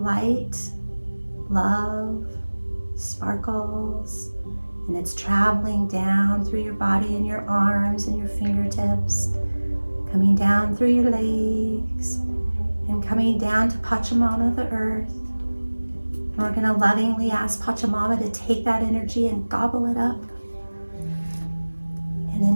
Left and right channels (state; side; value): inverted; both; correlation -1.00